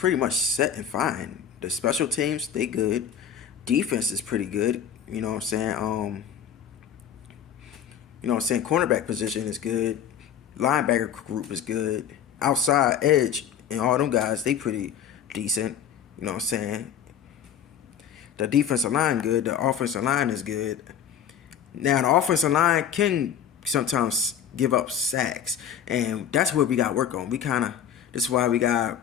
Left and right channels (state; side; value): quieter; right; 8.8 dB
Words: much set and fine. The special teams, they good. Defense is pretty good. You know what I'm saying? You know what I'm saying? Cornerback position is good. Linebacker group is good. Outside edge and all them guys, they pretty decent. You know what I'm saying? The defensive line good. The offensive line is good. Now, the offensive line can sometimes give up sacks. And that's what we got to work on. This is why we got to